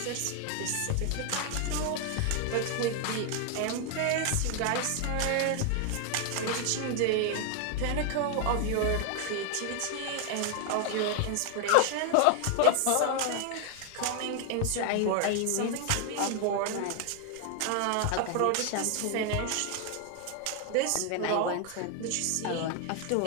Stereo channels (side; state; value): both; different; correlation 0.00